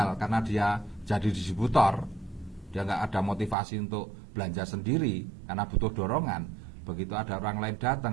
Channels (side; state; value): left; drops out; at 3.6 s